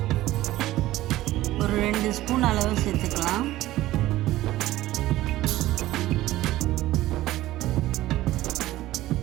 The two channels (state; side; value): quieter; left; 15.9 dB